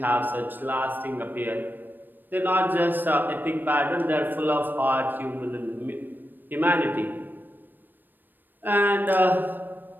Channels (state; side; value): late; left; 0.092 ms